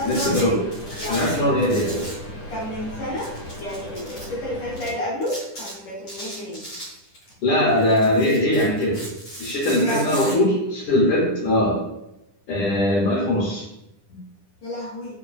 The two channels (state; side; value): late; right; 10 ms